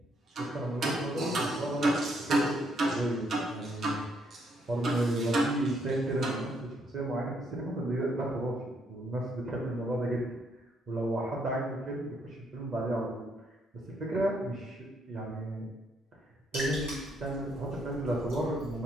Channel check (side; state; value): both; normal; correlation 0.72